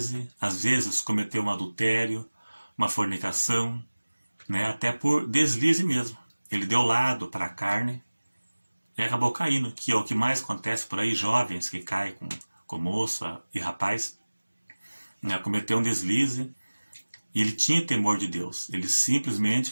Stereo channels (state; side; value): inverted; both; correlation -1.00